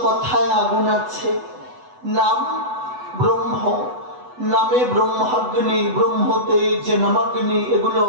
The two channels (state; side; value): late; left; 8.1 ms